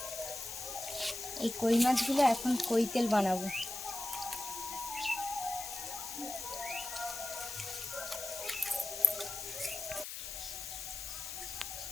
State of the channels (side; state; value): left; noise; hiss, 7 dB below the sound